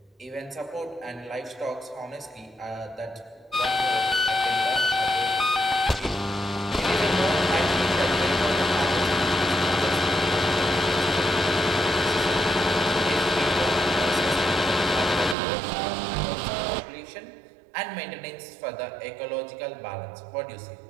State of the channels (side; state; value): left; drops out; at 15.4 s